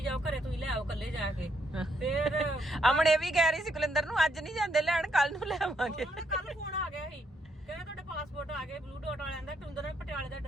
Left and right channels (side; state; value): both; normal; correlation 0.74